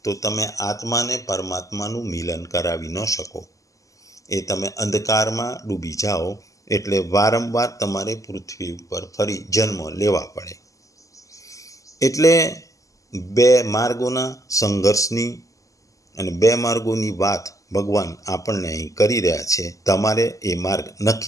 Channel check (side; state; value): right; late; 0.16 ms